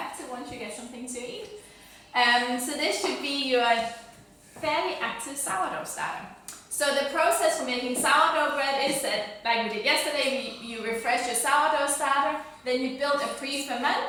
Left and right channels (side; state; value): both; identical; correlation 1.00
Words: once you get something to eat. So this should be your fairly active sourdough starter. So the process for making sourdough bread is that, like we did yesterday, you refresh your sourdough starter, then you build a